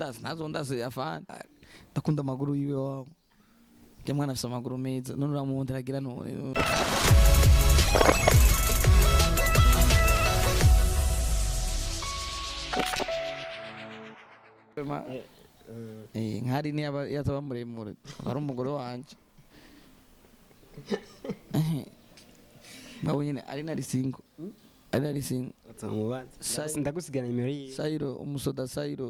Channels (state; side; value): identical; both; correlation 1.00